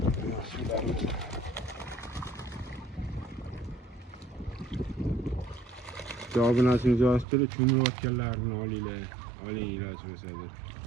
Javobingizni yozib cho'milayotganlarini olinglar. Oling iloji bo'lsa-da.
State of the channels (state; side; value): drops out; left; at 7.2 s